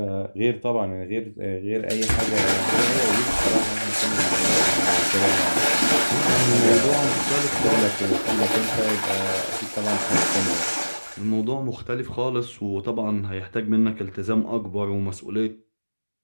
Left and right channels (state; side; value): inverted; both; correlation -1.00